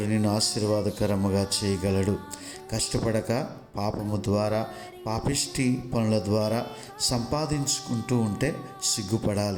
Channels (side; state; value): both; identical; correlation 1.00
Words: నిన్ను ఆశీర్వాదకరముగా చేయగలడు. కష్టపడక పాపము ద్వారా, పాపిష్టి పనుల ద్వారా సంపాదించుకుంటూ ఉంటే